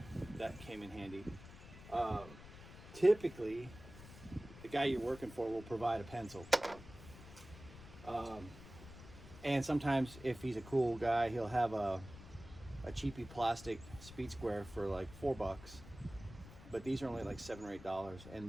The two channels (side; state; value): left; noise; rumble, 16 dB below the sound